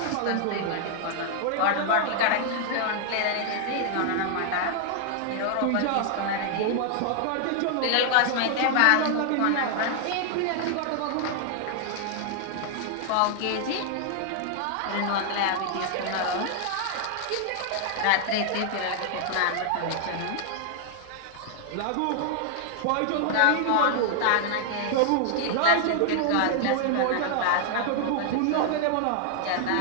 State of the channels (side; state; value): both; different; correlation 0.00